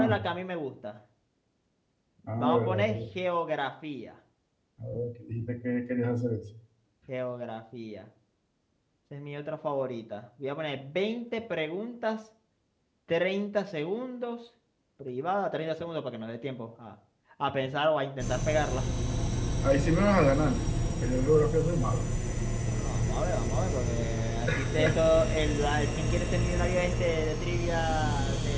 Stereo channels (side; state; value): both; identical; correlation 1.00